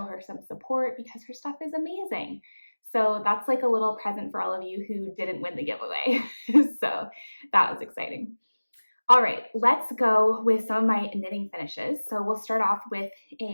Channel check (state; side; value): inverted; both; correlation -1.00